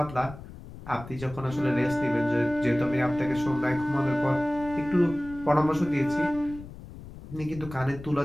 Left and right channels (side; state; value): left; noise; rumble, 15 dB below the sound